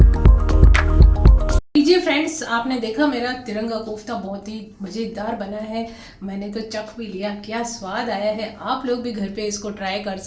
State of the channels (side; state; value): both; identical; correlation 1.00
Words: लीजिए फ्रेंड्स, आपने देखा मेरा तिरंगा कोफ्ता बहुत ही मज़ेदार बना है। मैंने तो चख भी लिया, क्या स्वाद आया है। आप लोग भी घर पे इसको ट्राई कर